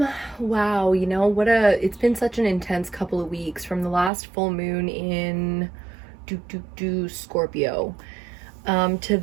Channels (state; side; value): drops out; left; at 4.1 s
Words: it's been such an intense couple of weeks from the last full moon in Scorpio. To